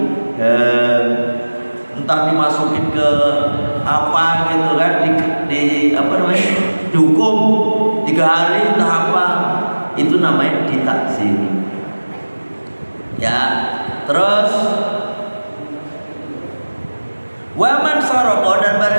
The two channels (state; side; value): inverted; both; correlation -1.00